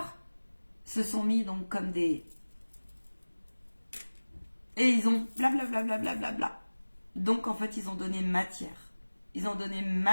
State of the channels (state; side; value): inverted; both; correlation -1.00